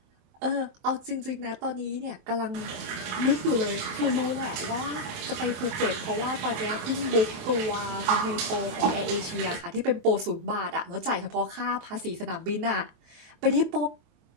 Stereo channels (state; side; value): late; left; 27 ms